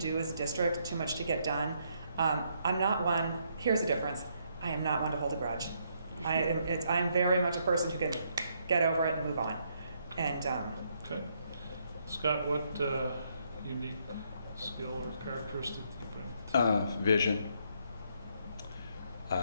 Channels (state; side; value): inverted; both; correlation -0.73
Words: as a district, too much to get done. I'm not one, here's the difference, I am not one to hold a grudge. I'm very much a person who can get over it and move on. And okay. Scott, what unique skill or characteristic do you bring? Vision.